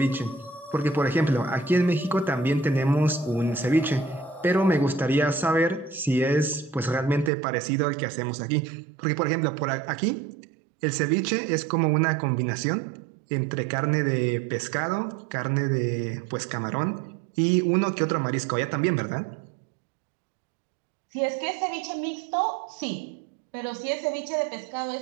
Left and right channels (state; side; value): drops out; left; at 7.3 s